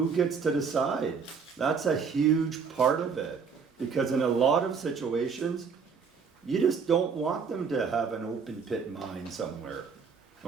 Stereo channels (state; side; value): quieter; left; 5.9 dB